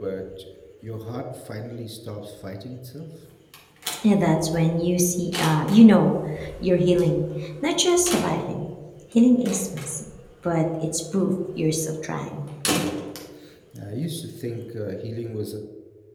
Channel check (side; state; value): both; identical; correlation 1.00